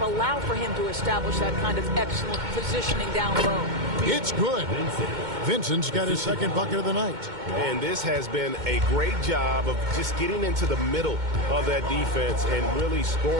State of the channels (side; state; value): left; late; 2.2 ms